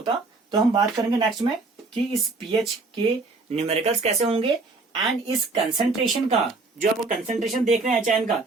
तो हम बात करेंगे नेक्स्ट में कि इस पीएच के न्यूमेरिकल्स कैसे होंगे एंड इस कंसंट्रेशन का, जो आपको कंसंट्रेशन देख रहे हैं एच आयन का,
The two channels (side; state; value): left; quieter; 3.6 dB